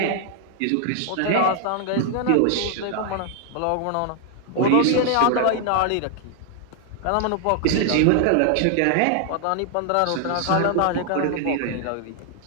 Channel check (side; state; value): both; different; correlation 0.00